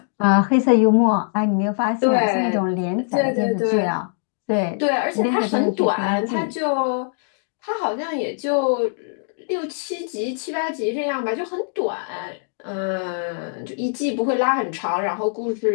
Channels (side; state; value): right; silent; digital silence